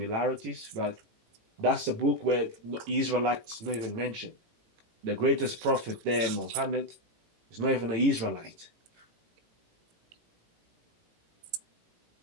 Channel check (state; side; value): late; left; 18 ms